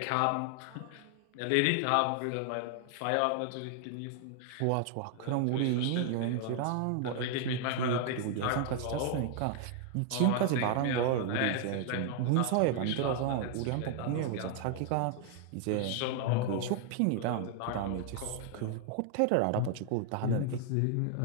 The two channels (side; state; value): both; different; correlation 0.00